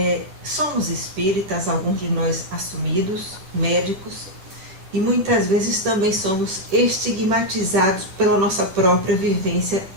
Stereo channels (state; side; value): late; left; 10 ms